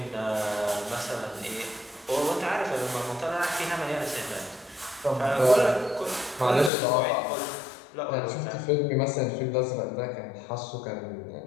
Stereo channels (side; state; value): right; drops out; at 6.7 s